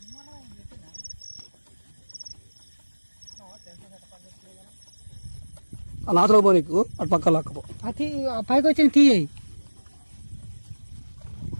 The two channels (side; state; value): both; inverted; correlation -1.00